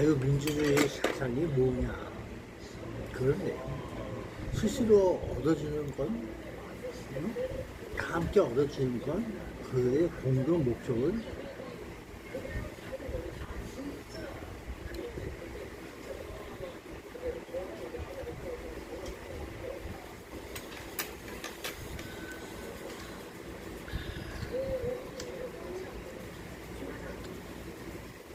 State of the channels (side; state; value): both; identical; correlation 1.00